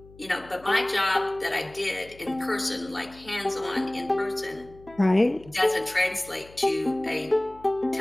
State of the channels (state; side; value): noise; left; hum, 23 dB below the sound